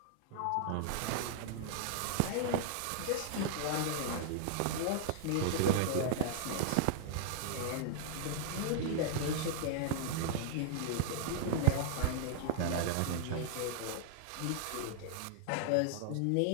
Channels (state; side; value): different; both; correlation -0.01